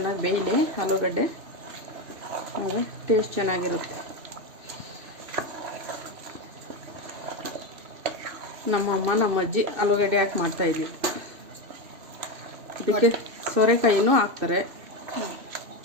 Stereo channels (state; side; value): late; left; 2.6 ms